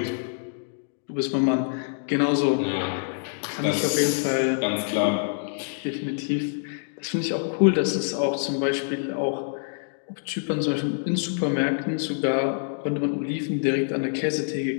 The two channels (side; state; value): right; silent; digital silence